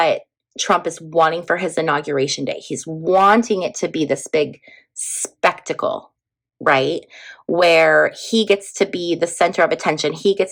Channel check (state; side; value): identical; both; correlation 1.00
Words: Trump is wanting for his inauguration day. He's wanting it to be this big spectacle, right? Where he gets to be the center of attention. He